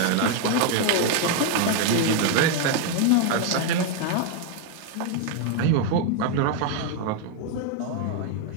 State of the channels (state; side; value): different; both; correlation 0.01